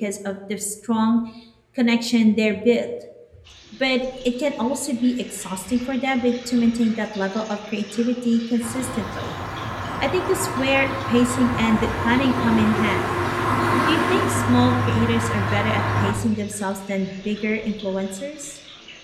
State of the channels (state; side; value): identical; both; correlation 1.00